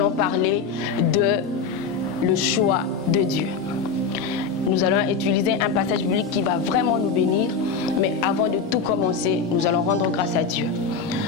parler de le choix de Dieu. Nous allons utiliser un passage biblique qui va vraiment nous bénir. Mais avant de tout commencer, nous allons rendre grâce à Dieu.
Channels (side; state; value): right; quieter; 5.2 dB